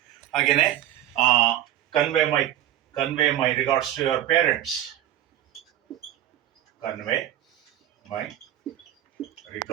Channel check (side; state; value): left; quieter; 12.4 dB